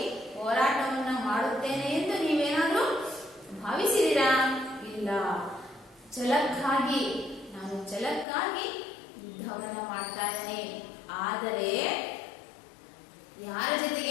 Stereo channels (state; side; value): drops out; right; at 8.2 s